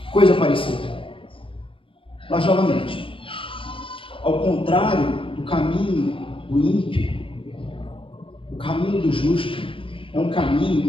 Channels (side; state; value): right; late; 0.25 ms